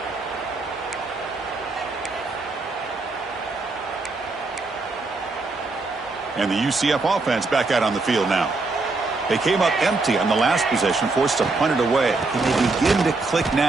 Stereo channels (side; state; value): left; quieter; 3.6 dB